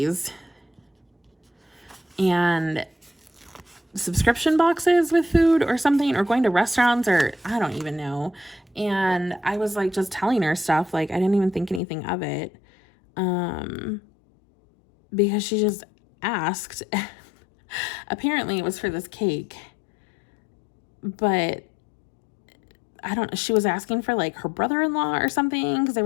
and subscription boxes with food or something, or going to restaurants, or I don't even know. And I was like just telling her stuff, like I didn't even think anything of it, because she just asked. Apparently it was for this cake, but I don't know, she was asking for like her brother-in-law or something, because they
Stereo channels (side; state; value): right; drops out; at 11.8 s